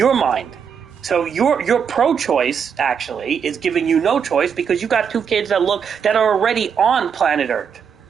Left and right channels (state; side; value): quieter; left; 7.1 dB